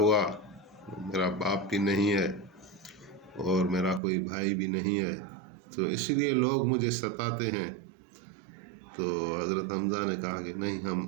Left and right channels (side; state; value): left; drops out; at 4.0 s